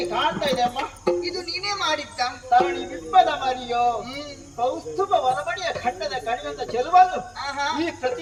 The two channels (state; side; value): identical; both; correlation 1.00